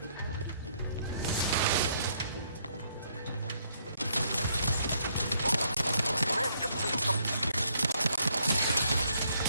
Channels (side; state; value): both; inverted; correlation -0.70